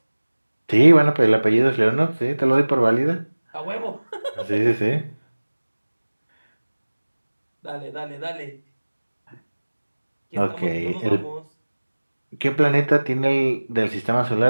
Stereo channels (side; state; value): both; inverted; correlation -1.00